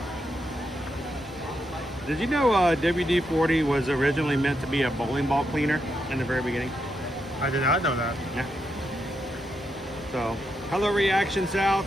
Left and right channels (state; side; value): normal; both; correlation 0.82